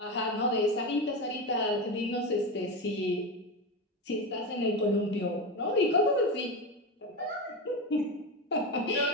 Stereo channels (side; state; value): both; normal; correlation 0.18